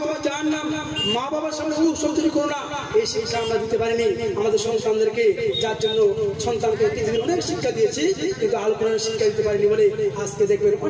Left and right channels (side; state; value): both; identical; correlation 1.00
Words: তোমার জাহান্নাম, মা বাবার সামনে শব্দ কি করো না। এই শিক্ষা আমরা দিতে পারিনি আমাদের সন্তানদেরকে, যার জন্য সন্তানকে পৃথিবীর অনেক শিক্ষা দিয়েছি, কিন্তু আল কোরআনের শিক্ষা দিতে পারিনি বলে আজকে দেখবেন